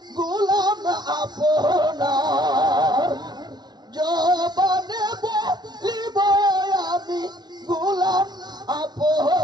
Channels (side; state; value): left; late; 0.20 ms